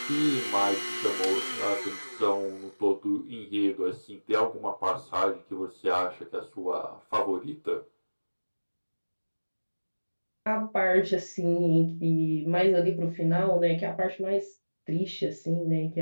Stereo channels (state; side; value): inverted; both; correlation -1.00